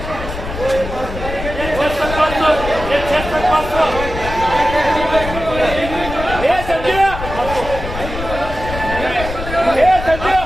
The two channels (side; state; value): left; noise; rumble, 8 dB below the sound